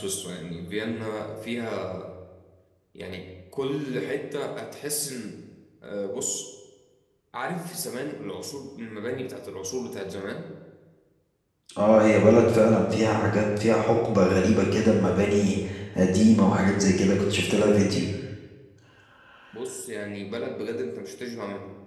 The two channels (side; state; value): both; identical; correlation 1.00